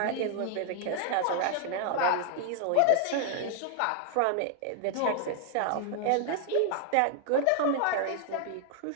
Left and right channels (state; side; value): different; both; correlation 0.00